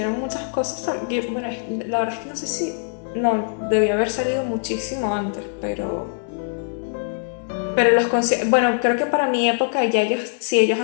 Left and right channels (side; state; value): right; silent; digital silence